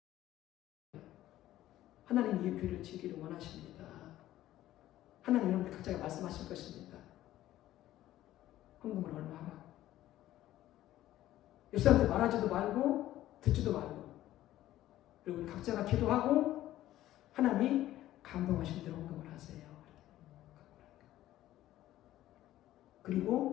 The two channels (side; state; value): right; quieter; 14.1 dB